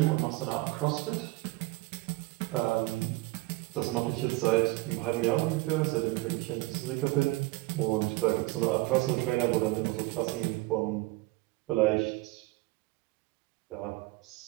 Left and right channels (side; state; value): left; quieter; 21.5 dB